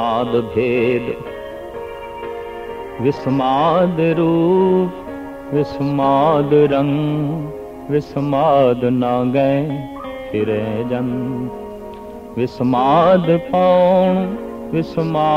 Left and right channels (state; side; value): identical; both; correlation 1.00